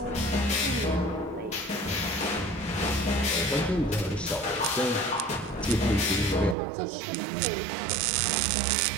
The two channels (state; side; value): drops out; left; at 6.6 s